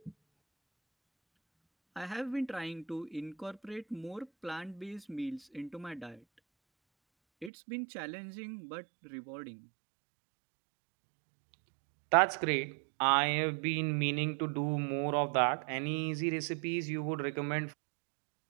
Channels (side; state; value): left; drops out; at 7.5 s